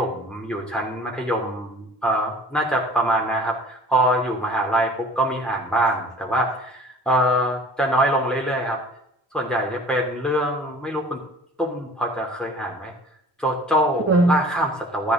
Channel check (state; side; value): normal; both; correlation 0.46